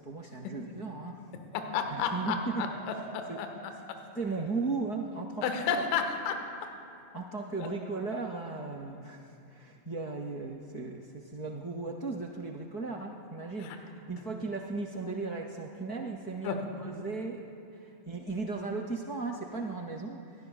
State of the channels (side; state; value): right; late; 4.6 ms